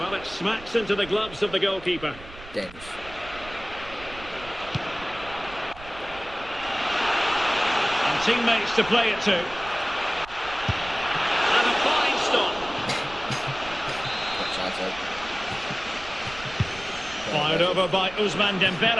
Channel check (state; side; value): noise; right; rumble, 17 dB below the sound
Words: Well, it smacks into the gloves of the goalkeeper. Dangerous. And teammates to play it to. And a fine stop. Fired over by Ousmane